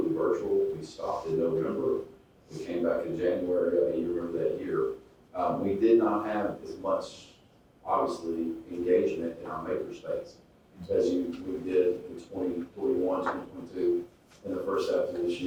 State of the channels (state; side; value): identical; both; correlation 1.00